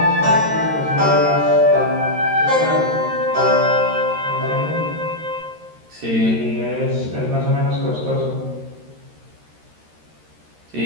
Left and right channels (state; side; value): late; left; 13 ms